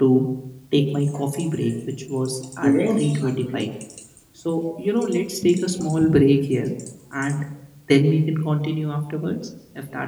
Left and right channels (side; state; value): both; identical; correlation 1.00